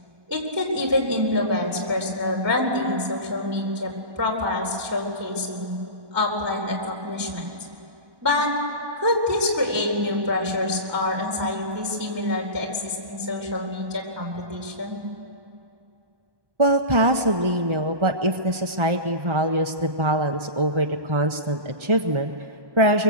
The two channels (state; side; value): late; left; 1.2 ms